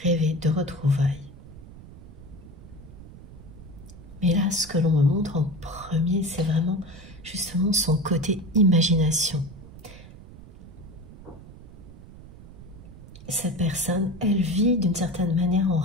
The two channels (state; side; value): noise; right; rumble, 17 dB below the sound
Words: rêver de retrouvailles. Mais là, ce que l'on me montre en premier, c'est vraiment justement son côté imagination. Cette personne, elle vit d'une certaine manière en